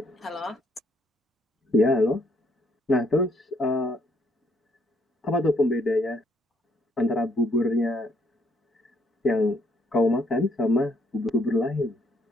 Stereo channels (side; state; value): both; normal; correlation 0.70